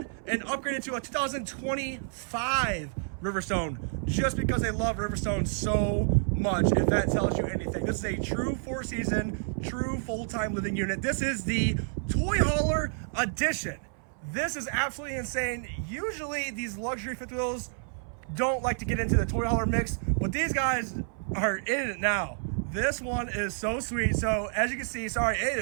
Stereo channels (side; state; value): left; silent; 58 dB below the other